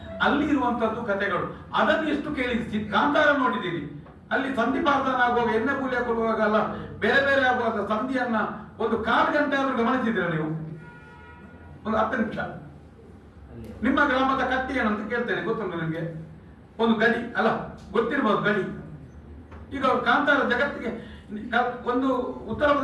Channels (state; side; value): identical; both; correlation 1.00